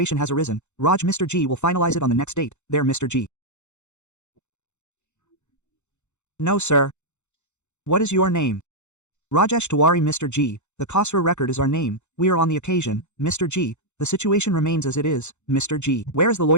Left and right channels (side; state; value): right; late; 0.83 ms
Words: has arisen. Raj Mr. G will finalize it on the next date. There Mr. G. No sir. What is your name? Rajesh Tiwari Mr. G, the Khosrow record is our name, we are on the occasion, Mr. G, the situation remains as it is, Mr. G. Where is the